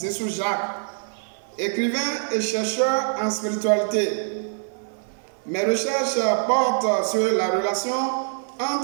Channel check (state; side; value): silent; left; 58 dB below the other